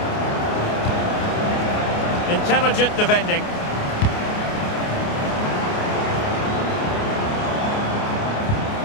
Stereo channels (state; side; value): late; right; 28 ms